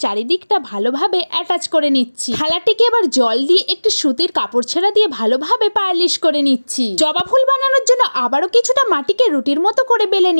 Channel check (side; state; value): both; inverted; correlation -1.00